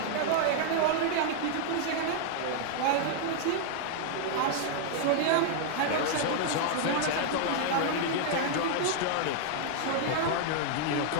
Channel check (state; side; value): different; both; correlation 0.00